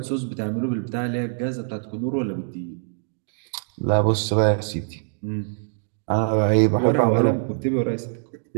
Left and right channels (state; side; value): silent; left; digital silence